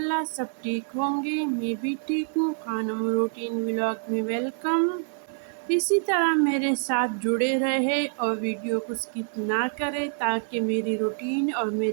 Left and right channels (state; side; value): silent; left; 60 dB below the other